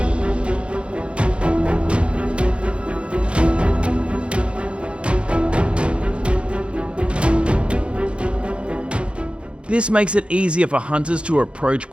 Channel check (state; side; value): late; left; 0.058 ms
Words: This makes it easier for hunters to approach